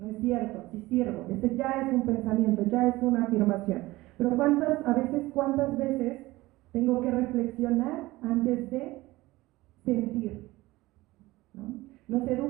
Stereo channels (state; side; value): quieter; left; 19.1 dB